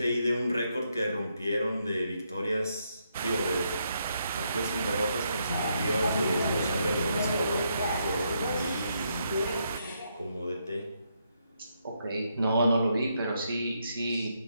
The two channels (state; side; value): inverted; both; correlation -0.78